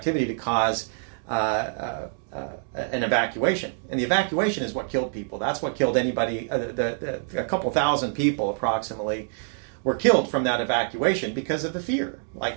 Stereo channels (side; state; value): left; silent; 61 dB below the other